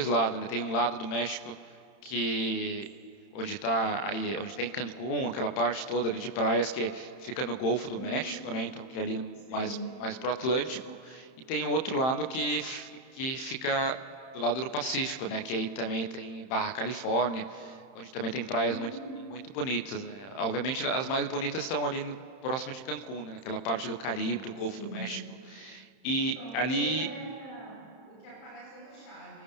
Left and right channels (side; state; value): right; late; 31 ms